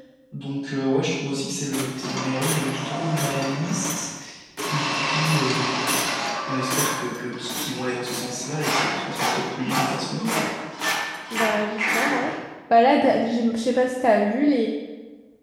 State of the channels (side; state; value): both; identical; correlation 1.00